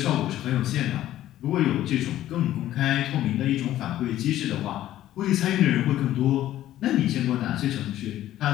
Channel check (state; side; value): quieter; right; 13.3 dB